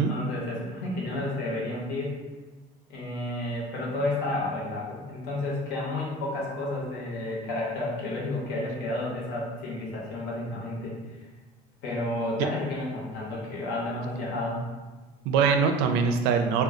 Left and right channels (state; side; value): normal; both; correlation 0.39